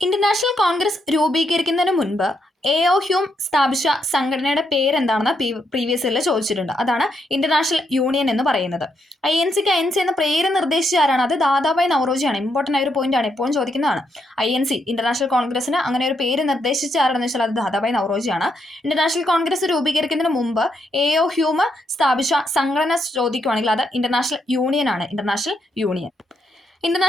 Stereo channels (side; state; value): both; normal; correlation 0.78